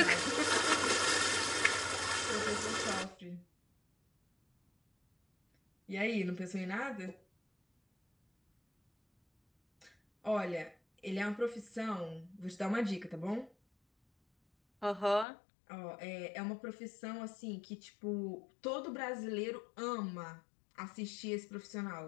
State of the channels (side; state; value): right; drops out; at 15.2 s